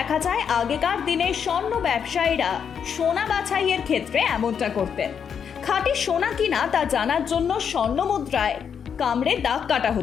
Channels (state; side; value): quieter; right; 7.3 dB